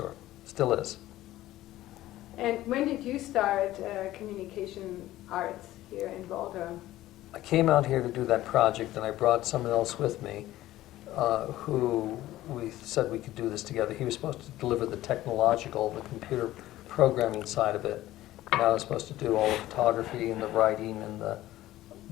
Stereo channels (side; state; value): right; quieter; 15.3 dB